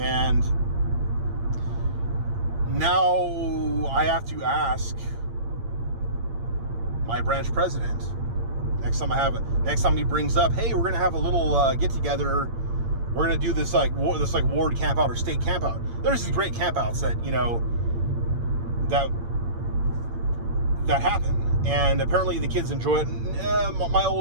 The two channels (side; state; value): left; late; 8.8 ms